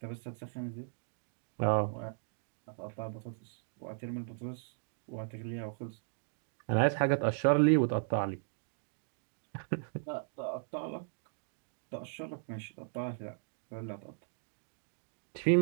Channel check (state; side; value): silent; left; digital silence